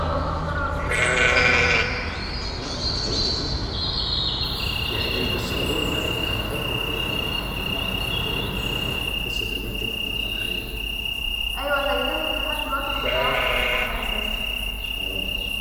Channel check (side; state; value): both; identical; correlation 1.00